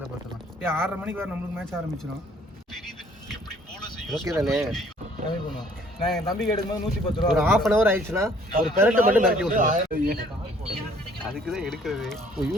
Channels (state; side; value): normal; both; correlation 0.59